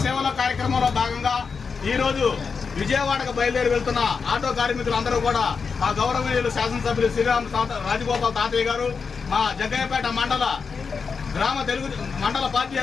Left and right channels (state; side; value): quieter; right; 5.4 dB